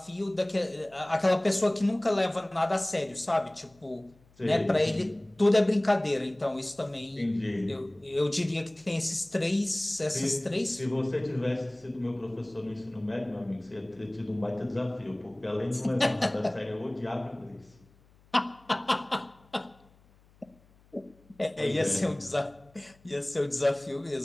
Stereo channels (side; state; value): left; noise; hum, 29 dB below the sound